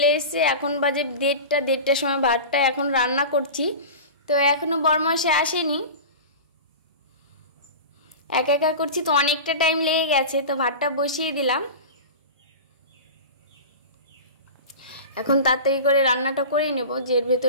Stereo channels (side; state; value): both; inverted; correlation -0.30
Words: এসেছে। এখন বাজে দেড়টার সময় ভাতটা এখন রান্না করছি, তো এখনও বরমাসে আসেনি, একা একা করছি, তো অনেকটা টাইম লেগে গেছে। তো ভাতটা বসিয়ে দিলাম, এখন তাড়াতাড়ি করে রান্নাটা করে নেব, যে এর